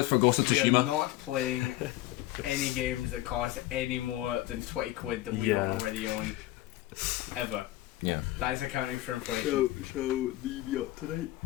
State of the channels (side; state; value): right; quieter; 16.0 dB